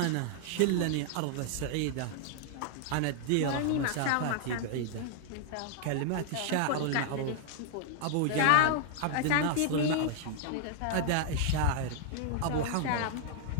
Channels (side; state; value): both; different; correlation 0.00